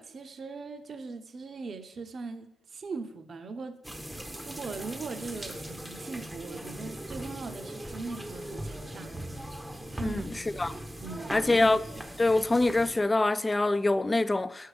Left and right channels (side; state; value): both; normal; correlation 0.96